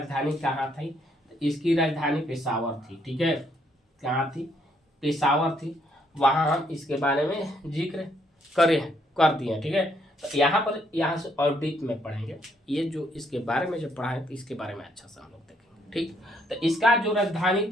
कहाँ थी, इसकी राजधानी पेशावर थी। ठीक है, कहाँ थी, पेशावर थी। वहाँ हम इसके बारे में जिक्र कर दिए। ठीक है, तो यहाँ से और डीप में पढ़ेंगे। ये जो इसके बारे में जो पढ़ा है, तो इसके बारे में अच्छा से हम लोग देखेंगे। ठीक, तो इसका जो राजधानी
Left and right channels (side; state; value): both; normal; correlation 0.71